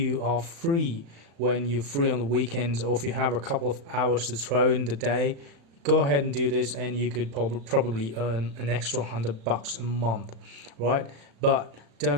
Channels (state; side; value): late; left; 36 ms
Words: are free, when you're free on the weekends, or if you have a couple of hours to throw in the day. Go ahead and do this, and you could probably earn an extra $100 a month, right? But